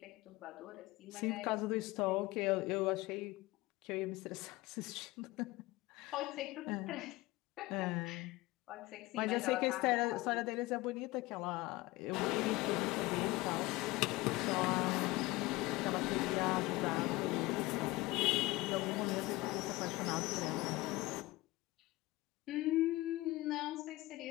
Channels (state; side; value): quieter; right; 20.3 dB